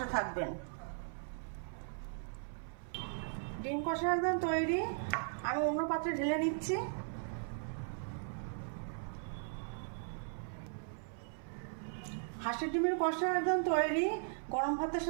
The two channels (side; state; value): left; silent; 52 dB below the other